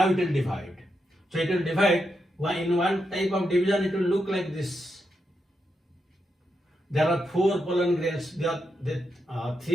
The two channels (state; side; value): normal; both; correlation 0.84